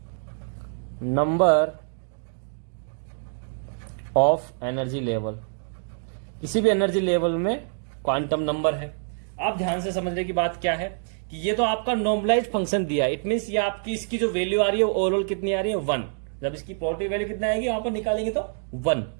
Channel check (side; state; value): left; silent; digital silence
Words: number of energy level. किसी भी एनर्जी लेवल में क्वांटम नंबर है। आप ध्यान से समझने की बात क्या है कि ये तो आपका नॉर्मलाइज्ड फंक्शन दिया है। इट मींस ये आपकी इसकी जो वैल्यू आ रही है ओवरऑल कितनी आ रही है, 1। जब इसकी प्रोबेबिलिटी वैल्यू कितना आएगी यहां पर निकालेंगे तो 1।